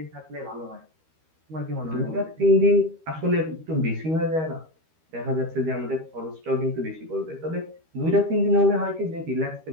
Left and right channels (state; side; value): late; left; 13 ms